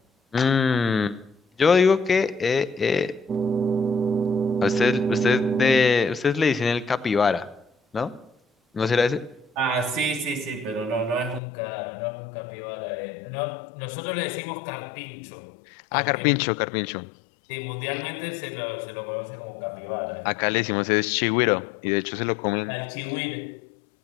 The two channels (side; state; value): right; drops out; at 11.4 s